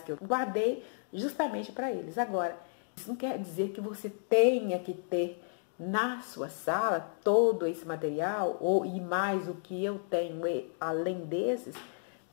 que eu guardei justamente para eles. Agora, isso não quer dizer que você tenha que ter na sua sala todo esse material e mais o que eu tenho além desses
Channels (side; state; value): right; silent; digital silence